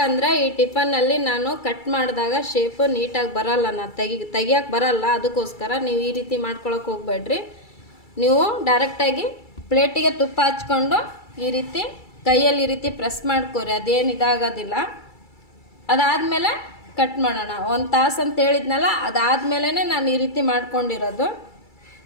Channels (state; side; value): late; right; 2.3 ms